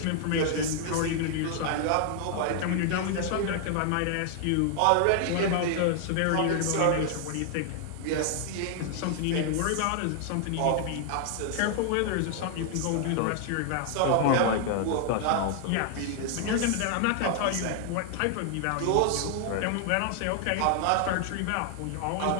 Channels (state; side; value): different; both; correlation 0.00